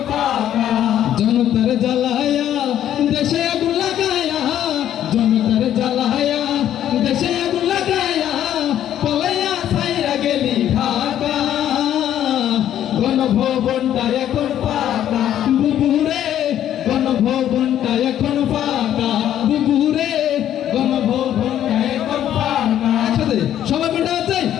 ফাঁকা। জনতার জ্বালায়া দেশে আগুন লাগায়া, জনতার জ্বালায়া দেশে আগুন লাগায়া পালাইয়া ছাইরা গেলি ঢাকা। গণভবনটা এখন ফাঁকা বুবুরে, গণভবনটা এখন ফাঁকা বুবুরে, গণভবনটা এখন ফাঁকা, একসাথে সবাই কোনটা আছে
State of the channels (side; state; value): right; quieter; 11.1 dB